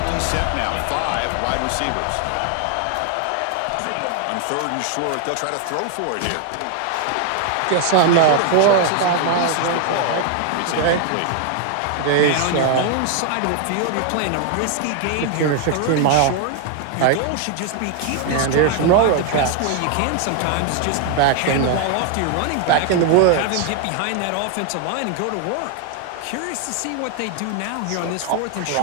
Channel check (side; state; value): both; different; correlation 0.00